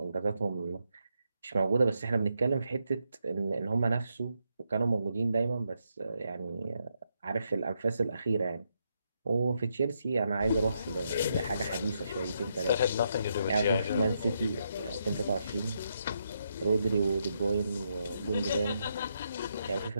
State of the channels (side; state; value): both; inverted; correlation -0.80